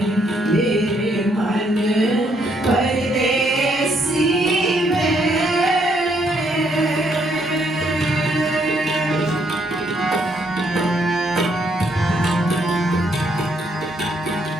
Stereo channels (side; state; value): both; normal; correlation 0.72